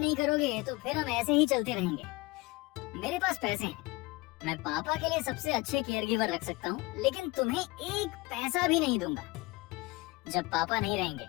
करोगे तो फिर हम ऐसे ही चलते रहेंगे। मेरे पास पैसे हैं, मैं पापा के लिए सबसे अच्छे केयर गिवर रख सकता हूँ, लेकिन तुम्हें एक पैसा भी नहीं दूंगा। जब पापा नहीं रहेंगे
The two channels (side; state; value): right; quieter; 22.6 dB